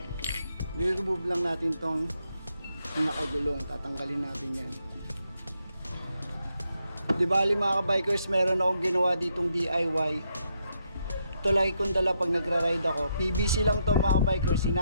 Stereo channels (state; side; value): inverted; both; correlation -0.79